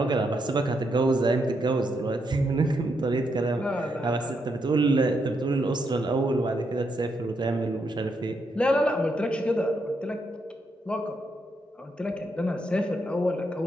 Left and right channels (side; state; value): both; normal; correlation 0.80